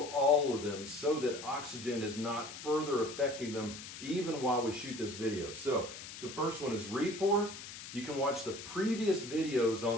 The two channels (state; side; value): noise; left; hiss, 11 dB below the sound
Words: all of them so that oxygen is not further affecting them even while we shoot this video. So the first one is re-pour. You can watch the previous videos